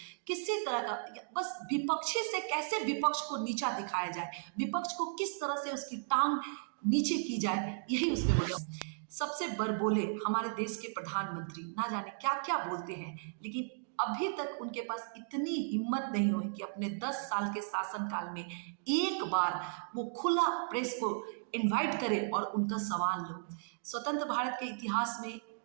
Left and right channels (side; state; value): left; silent; digital silence